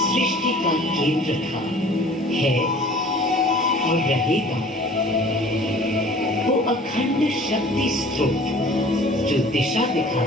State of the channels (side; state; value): both; normal; correlation 0.48